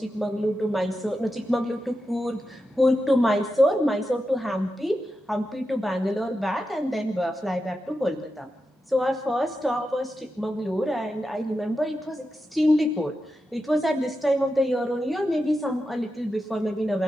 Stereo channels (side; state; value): both; normal; correlation 0.89